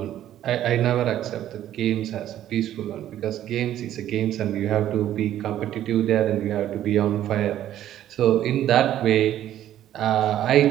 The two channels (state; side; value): quieter; left; 12.1 dB